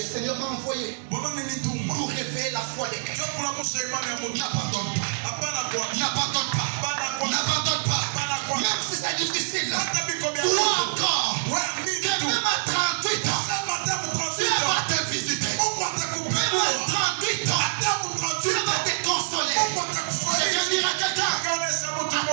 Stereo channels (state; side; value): silent; left; 61 dB below the other